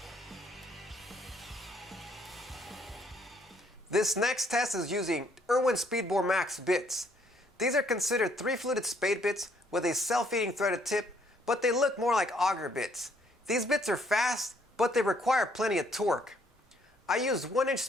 This next test is using Irwin Speedbore Max bits. These are considered 3-fluted Spade bits with a self-feeding threaded tip, but they look more like Auger bits. These bits are fast, but they require plenty of torque. I used 1-inch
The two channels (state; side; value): normal; both; correlation 0.67